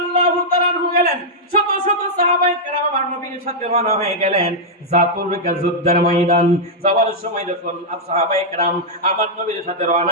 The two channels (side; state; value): both; normal; correlation -0.06